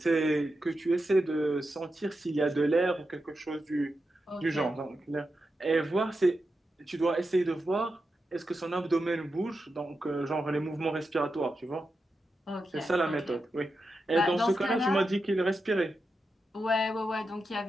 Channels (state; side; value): normal; both; correlation 0.89